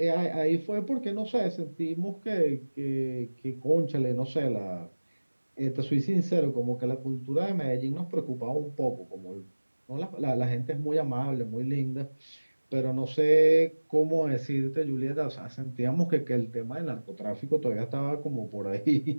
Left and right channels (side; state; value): both; inverted; correlation -1.00